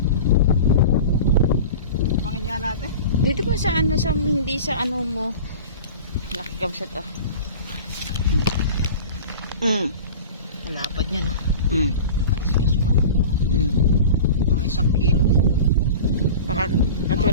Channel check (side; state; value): both; inverted; correlation -0.35